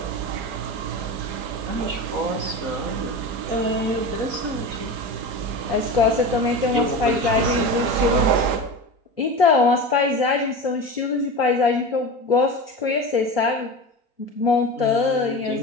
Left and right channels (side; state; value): left; late; 4.0 ms